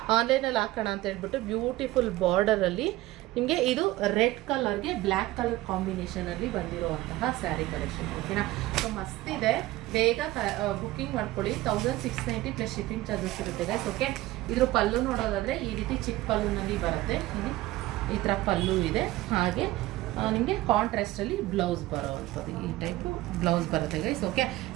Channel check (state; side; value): quieter; left; 17.3 dB